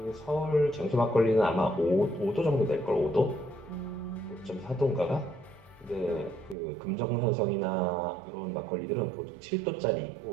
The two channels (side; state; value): left; drops out; at 6.6 s